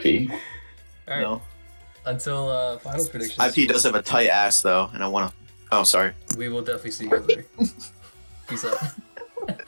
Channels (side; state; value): both; inverted; correlation -1.00